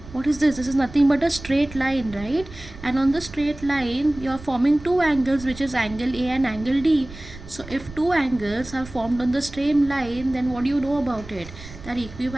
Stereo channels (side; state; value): right; noise; rumble, 16 dB below the sound